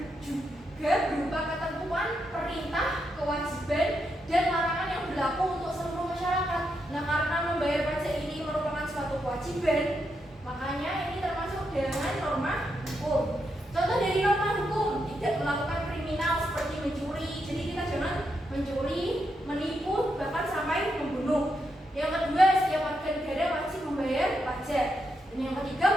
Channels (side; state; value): both; normal; correlation 0.82